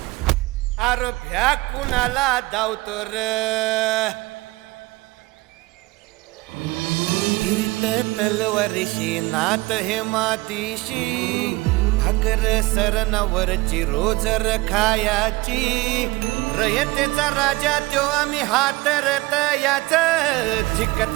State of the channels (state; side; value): quieter; left; 21.8 dB